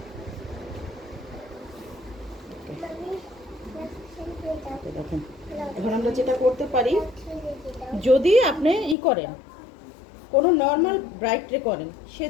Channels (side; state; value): right; drops out; at 9.0 s